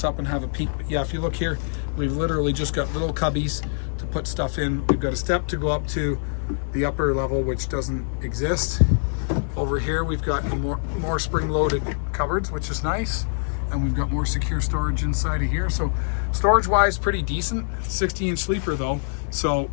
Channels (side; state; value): right; silent; digital silence